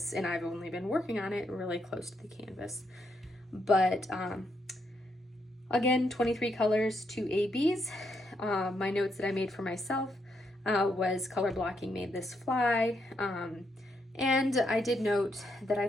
and I've only been working on it really close to the canvas. But again, 23 colors, 2 ABs. My notes that I made for myself was color blocking made this fly. And I did note that I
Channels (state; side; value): normal; both; correlation 0.78